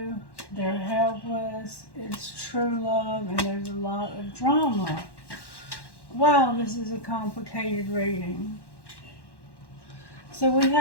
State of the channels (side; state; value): right; late; 1.1 ms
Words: They're helpless. It's true love, and there's a lot of drama. Wow, this is a complicated reading. So we